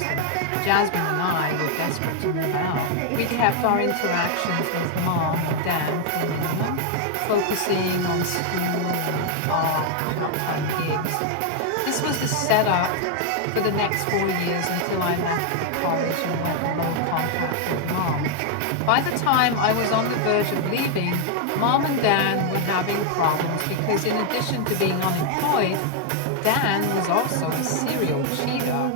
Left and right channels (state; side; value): different; both; correlation 0.00